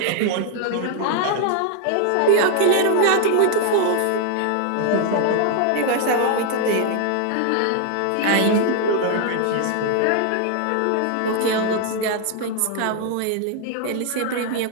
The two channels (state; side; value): different; both; correlation 0.00